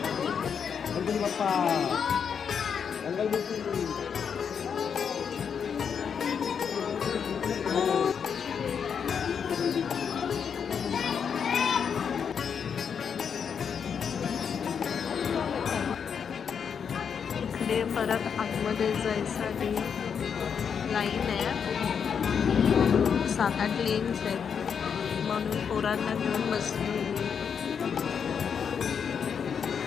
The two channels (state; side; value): quieter; right; 7.0 dB